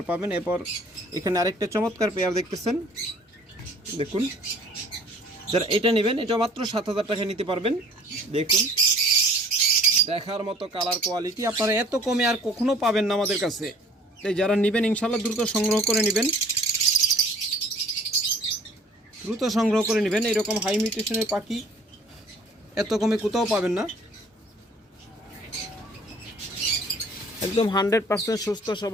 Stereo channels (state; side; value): normal; both; correlation 0.53